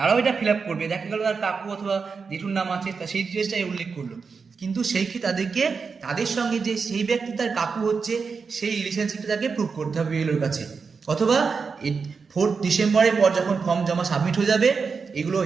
এটা ফিল আপ করবে। দেখা গেল তার কাকু অথবা জেঠুর নাম আছে, তা সেই ডিটেলসটাই উল্লেখ করলো, কিন্তু সেই ক্ষেত্রে তাদেরকে তাদের সঙ্গে যে সেই ব্যক্তি তার কাকু হচ্ছে সেই রিলেশনশিপটা তাকে প্রুভ করতে হবে বিএলওর কাছে। অথবা 4 ডিসেম্বরের পর যখন ফর্ম জমা সাবমিট হয়ে যাবে, এগুলো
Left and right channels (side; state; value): left; quieter; 5.2 dB